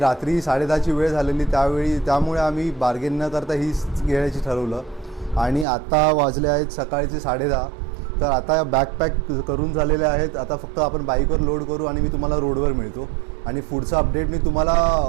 10:30ची वेळ झालेली त्यामुळे आम्ही बार्गेन न करता हीच घेण्याची ठरवलं. आणि आता वाजले आहेत सकाळचे 10:30. तर आता बॅकपॅक करून झालेले आहेत. आता फक्त आपण बाईकवर लोड करू आणि मी तुम्हाला रोडवर मिळतो आणि पुढचा अपडेट मी तुम्हाला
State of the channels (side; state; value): left; drops out; at 5.7 s